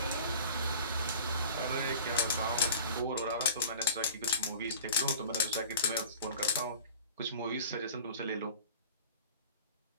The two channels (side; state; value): both; inverted; correlation -0.41